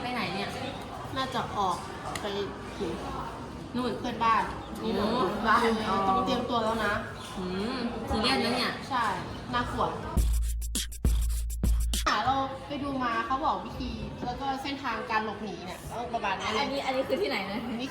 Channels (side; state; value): both; identical; correlation 1.00